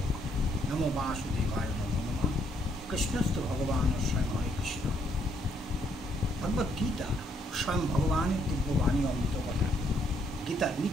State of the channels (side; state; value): both; normal; correlation 0.71